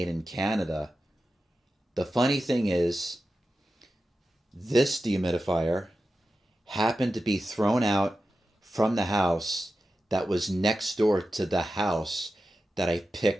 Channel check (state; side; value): normal; both; correlation 0.92